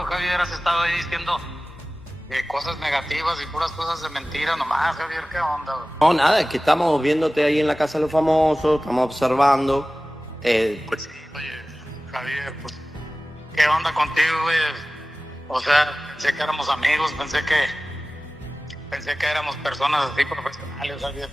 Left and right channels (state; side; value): normal; both; correlation 0.97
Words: Javier, has estado ahí diciendo cosas negativas y puras cosas de mentira nomás, Javier, ¿qué onda? No, nada, es que estamos viéndote ahí en la casa de los famosos, estamos observando. Pues sí, oye, Javier, pues, ¿qué onda contigo, güey? O sea, pensé que éramos amigos, pensé Pensé que éramos personas así profesionales, ¿sabías